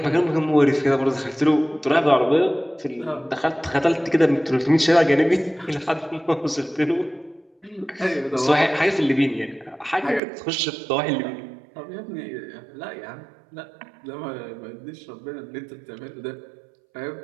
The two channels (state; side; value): drops out; left; at 10.2 s